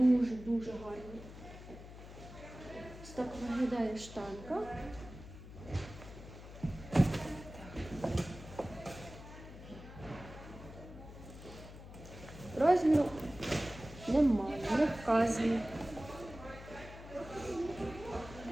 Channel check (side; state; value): left; noise; hum, 14 dB below the sound